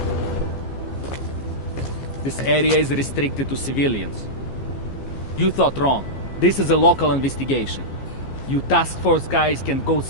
This area is restricted to civilians. You thought wrong. This is a local investigation. You task force guys can go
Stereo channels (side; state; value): right; late; 15 ms